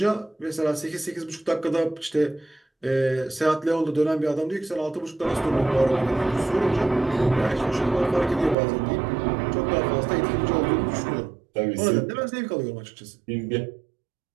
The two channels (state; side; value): drops out; left; at 8.6 s